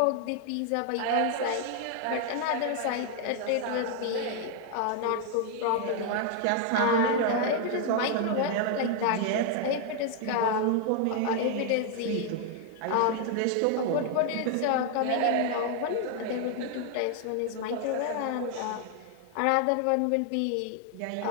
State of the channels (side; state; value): both; different; correlation 0.00